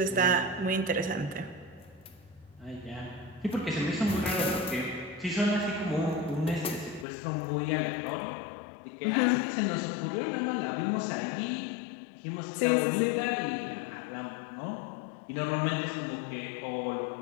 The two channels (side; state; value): right; drops out; at 7.1 s